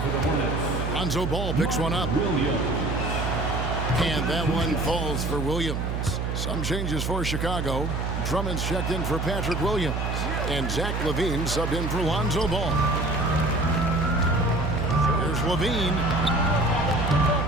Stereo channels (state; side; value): noise; right; hum, 2 dB below the sound